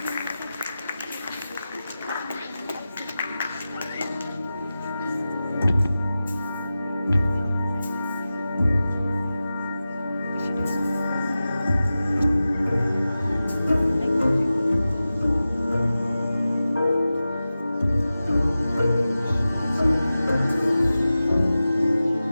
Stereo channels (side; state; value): both; inverted; correlation -0.95